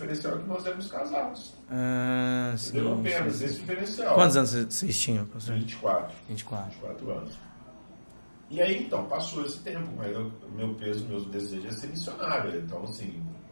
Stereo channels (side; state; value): both; inverted; correlation -1.00